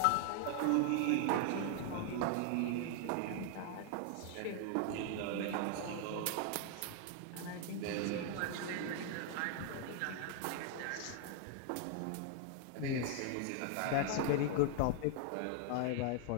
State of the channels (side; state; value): both; different; correlation 0.00